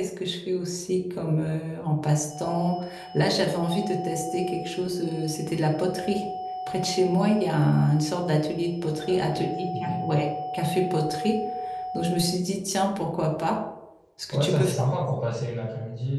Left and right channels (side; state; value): both; identical; correlation 1.00